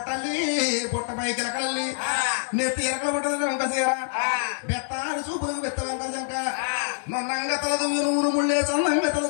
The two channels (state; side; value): silent; right; digital silence